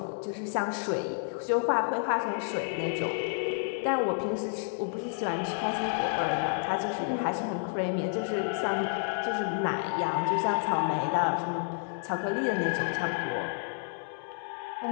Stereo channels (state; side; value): silent; right; 58 dB below the other